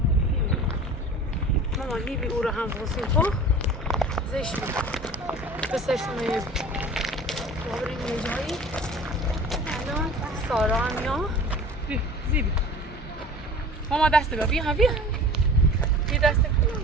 ماما نیبی او رو هم بسیم خب زشت بود بسشتون رو یه بریم یه جایی الان سارا هم یا بیا زیبی ماما دست بیا بیا بیا بیا دست بیا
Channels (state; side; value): normal; both; correlation 0.41